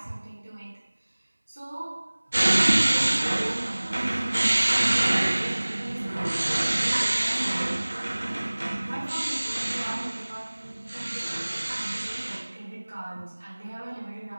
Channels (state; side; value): inverted; both; correlation -1.00